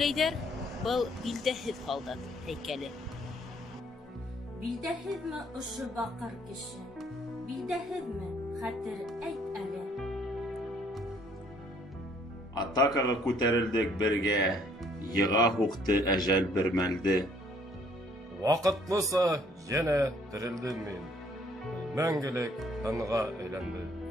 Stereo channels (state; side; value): normal; both; correlation 0.63